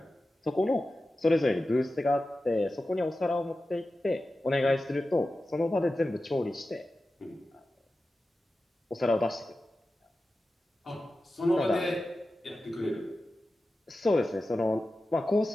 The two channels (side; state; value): both; normal; correlation 0.94